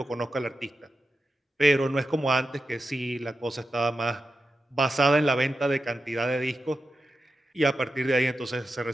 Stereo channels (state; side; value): normal; both; correlation 0.90